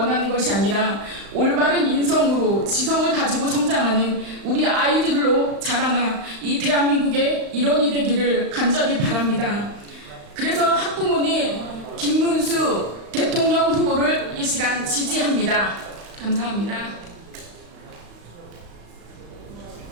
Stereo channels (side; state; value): left; late; 35 ms